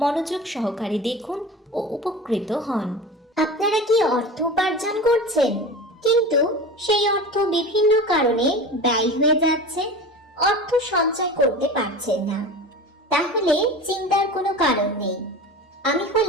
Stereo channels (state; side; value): normal; both; correlation 0.33